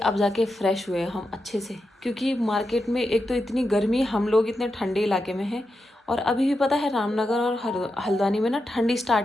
जाके फ्रेश हुए हम अच्छे से, क्योंकि मार्केट में एक तो इतनी गर्मी, हम लोग इतने ठंडे इलाके में हैं, और अभी भी पता है रामनगर और हल्द्वानी में ना ठंडी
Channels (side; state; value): both; normal; correlation 0.88